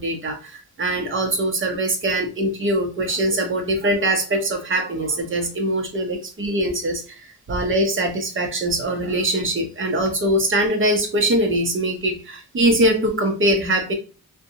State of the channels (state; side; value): normal; both; correlation 0.00